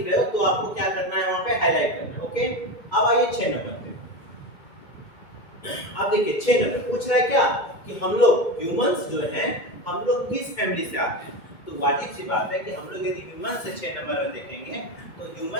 रहे हो तो आपको क्या करना है, वहां पे हाईलाइट करना है, ओके। अब आइए 6 नंबर पे। अब देखिए 6 नंबर पूछ रहा है क्या कि हम लोग ह्यूमंस जो हैं, हम लोग किस फैमिली से आते हैं। तो वाजिब सी बात है कि हम लोग यदि ह्यूमंस से 6 नंबर में देखेंगे तो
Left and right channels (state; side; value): late; right; 2.2 ms